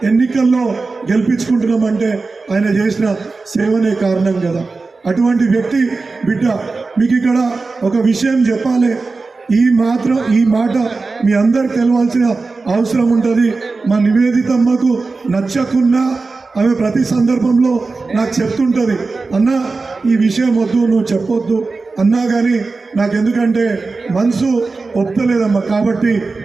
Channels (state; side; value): quieter; left; 3.9 dB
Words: ఎన్నికల్లో గెలిపించుకుంటున్నామంటే ఆయన చేసిన సేవనే కారణం కదా. అటువంటి వ్యక్తి బిడ్డ. మీకు ఇక్కడ ఒక విషయం చెప్పాలి, ఈ మాట మీ అందరికి తెలవాల్సిన అవసరం ఉంటుంది. మా నివేదితమ్మకు నచ్చకున్నా ఆమె ప్రతి సందర్భంలో నాకు చెప్తుంటుంది, అన్న ఈ విషయం వద్దు, నువ్వు చెప్పొద్దు అన్నా కానీ నాకెందుకంటే మనసు ఒప్పుతలేదమ్మా, కాబట్టి